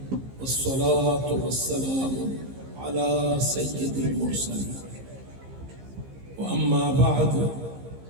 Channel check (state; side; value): late; left; 15 ms